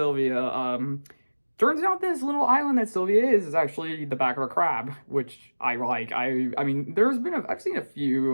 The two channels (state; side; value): inverted; both; correlation -1.00